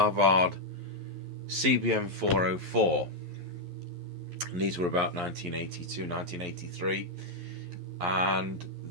CBM404, and these were about 1982, 1983, and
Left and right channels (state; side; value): late; left; 11 ms